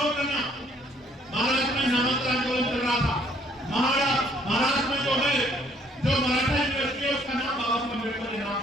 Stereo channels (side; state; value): both; normal; correlation 0.64